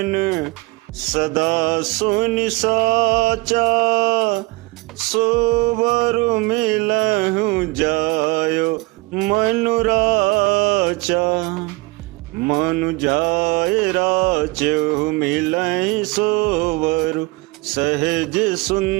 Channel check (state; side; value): quieter; left; 24.8 dB